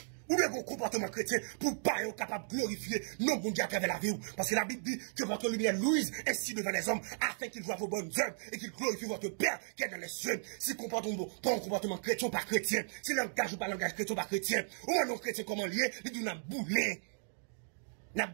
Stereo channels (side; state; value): left; silent; digital silence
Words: Ou bien vos comportements chrétiens pour pas être capable de glorifier non bon Dieu à travers la vie. Parce que la Bible dit que votre lumière luise ainsi devant les hommes afin qu'ils voient vos bonnes œuvres et qu'ils glorifient votre Père qui est dans les cieux. Si comportement pas un comportement chrétien ou pas chrétien, si langage ou pas langage chrétien ou pas chrétien, ou un non chrétien comment lié, il dit n'a boulé, n'a